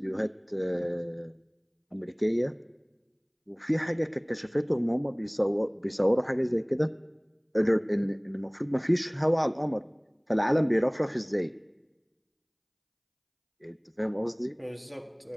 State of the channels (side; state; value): both; identical; correlation 1.00